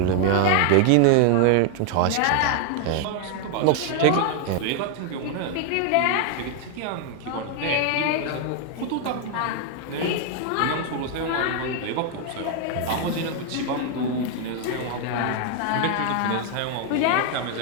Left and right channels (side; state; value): both; different; correlation 0.00